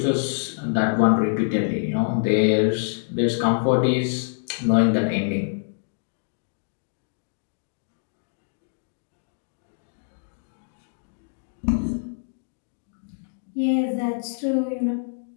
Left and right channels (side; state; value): right; silent; digital silence